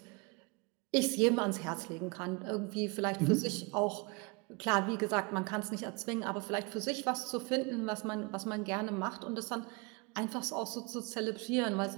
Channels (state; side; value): quieter; left; 29.4 dB